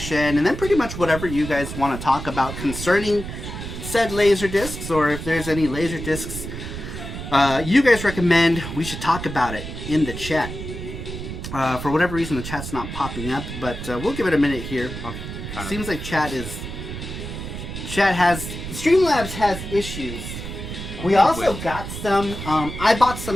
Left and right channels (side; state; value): right; noise; rumble, 8 dB below the sound